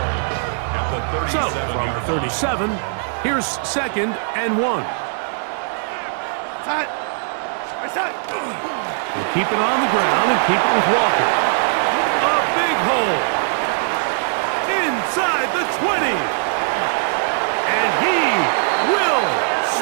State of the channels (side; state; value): left; silent; digital silence